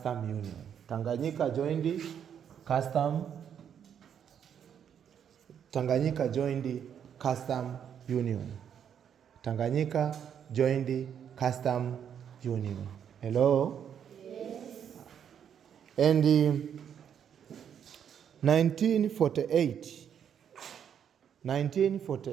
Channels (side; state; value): left; quieter; 8.5 dB